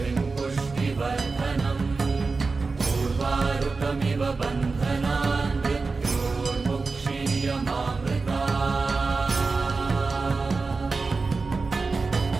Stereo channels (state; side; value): quieter; left; 4.1 dB